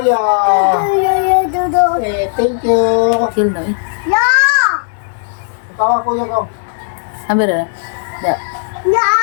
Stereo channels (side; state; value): right; silent; digital silence